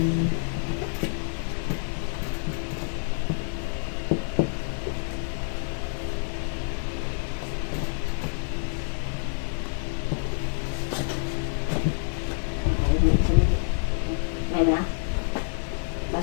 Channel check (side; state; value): right; silent; 60 dB below the other